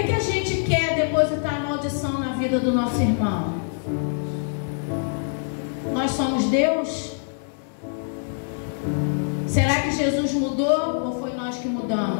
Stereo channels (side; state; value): right; silent; digital silence